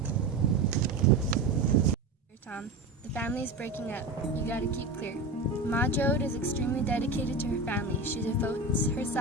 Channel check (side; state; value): left; quieter; 3.1 dB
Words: Tom, the family is breaking up. You gotta keep clear. Ma Jode is extremely dedicated to her family. She devotes